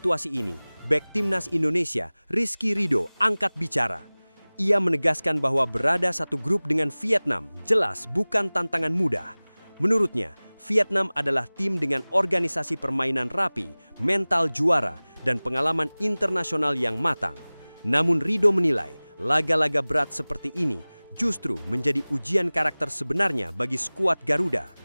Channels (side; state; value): both; inverted; correlation -1.00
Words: ini, bek timnas Indonesia, Rido, angkat bicara. Ia menegaskan bahwa berada satu grup dengan Vietnam jelas bukan tantangan mudah. Menurutnya, Vietnam adalah tim dengan organisasi permainan rapi, mental juara, dan pengalaman internasional yang matang. Namun Rido menilai, laga-laga berat seperti ini justru menjadi ujian karakter sebenarnya bagi skuad Garuda.